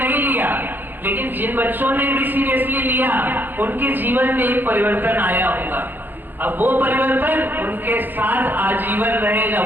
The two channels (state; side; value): late; left; 0.089 ms